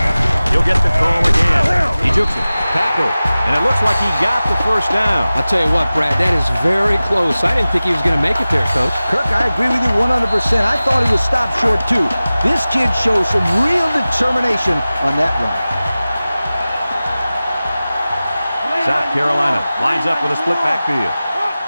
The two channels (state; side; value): inverted; both; correlation -0.97